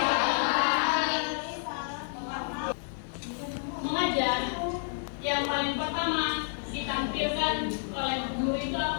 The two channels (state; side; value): silent; right; digital silence